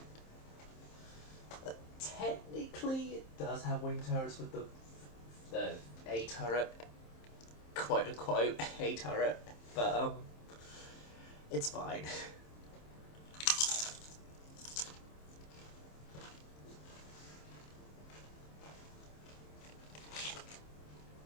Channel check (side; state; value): right; late; 27 ms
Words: Technically, it does have wing turrets with the A turret, quote unquote A turret, but it's fine.